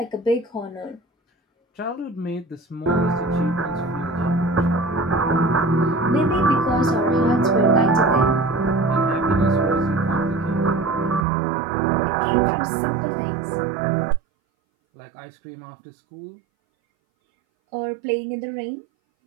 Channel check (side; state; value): left; drops out; at 11.2 s